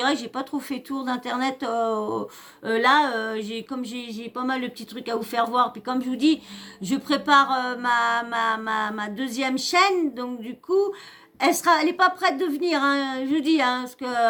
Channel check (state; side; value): identical; both; correlation 1.00